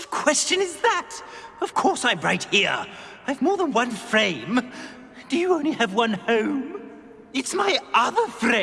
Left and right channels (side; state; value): both; identical; correlation 1.00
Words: question is that? Of course I'm right here. I've more than one frame. Do you only have one home? It's my other